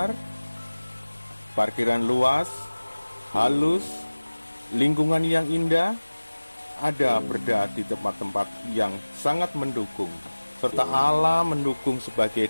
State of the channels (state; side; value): inverted; both; correlation -1.00